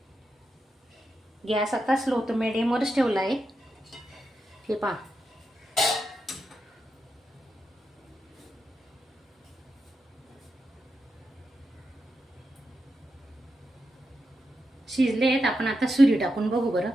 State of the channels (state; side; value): normal; both; correlation 0.86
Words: गॅस आता स्लो तो मिडियमवरच ठेवला आहे. हे पहा शिजले आहेत. आपण आता सुरी टाकून बघू बरं,